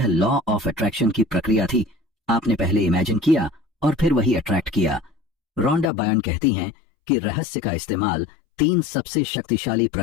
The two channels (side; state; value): right; drops out; at 5.9 s